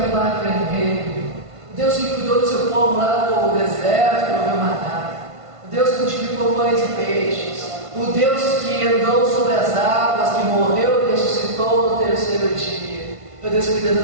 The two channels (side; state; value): left; late; 1.5 ms